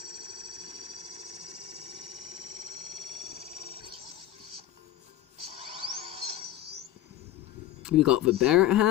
We got the Barrett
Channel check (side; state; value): right; quieter; 12.7 dB